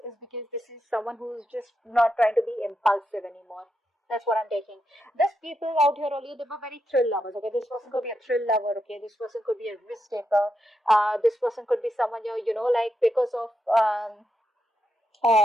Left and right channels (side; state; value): both; normal; correlation 0.84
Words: because this is someone who's just not trying to be impulsive anymore. That's what I'm taking. These people out here earlier, they were very thrill lovers. Okay, this person could be a thrill lover. Okay, this person could be a risk taker. This person could be someone like because of um,